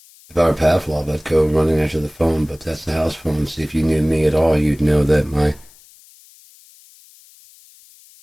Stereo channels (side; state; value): left; noise; hiss, 26 dB below the sound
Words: If I were Pavlov, I'd go running after the phone, but that's the house phone. See, if you knew me at all, you'd know that my